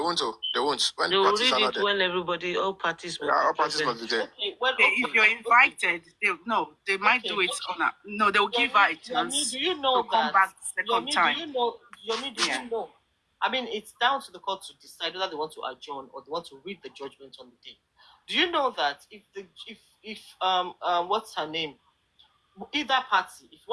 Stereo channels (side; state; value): both; identical; correlation 1.00